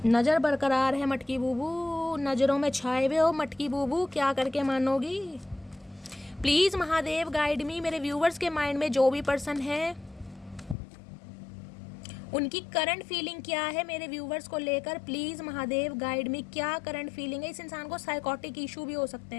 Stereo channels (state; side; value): drops out; right; at 10.8 s